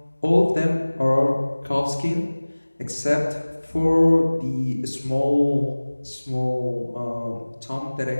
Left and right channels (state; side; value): inverted; both; correlation -1.00